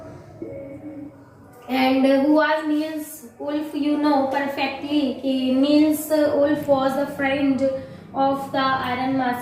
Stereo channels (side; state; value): both; identical; correlation 1.00